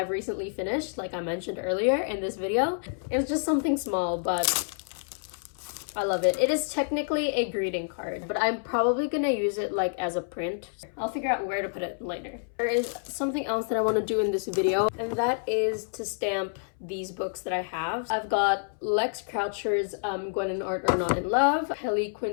recently finished, like I mentioned earlier in this video. It was just something small, but I love it. It is technically a greeting card, but I'm probably gonna use it like as a print. I'll figure out where to put it later. There is something else that I want to do in this video, and that is to stamp these books that I have. I've got Lex Croucher's Gwen and Art Are Not in Love, Helly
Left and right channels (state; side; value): silent; right; 59 dB below the other